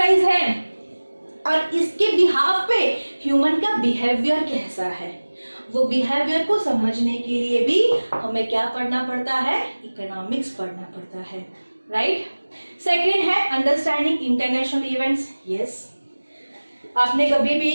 है, और इसके बिहाफ पे ह्यूमन का बिहेवियर कैसा है, वो बिहेवियर को समझने के लिए भी हमें क्या पढ़ना पड़ता है, इकोनॉमिक्स पढ़ना पड़ता है, राइट। सेकेंड है अंडरस्टैंडिंग इंटरनेशनल इवेंट्स। यस, आपने कभी भी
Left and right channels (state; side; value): inverted; both; correlation -1.00